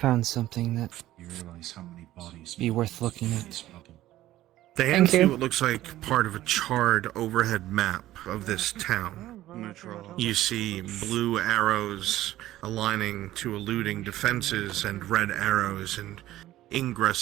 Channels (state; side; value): quieter; left; 14.7 dB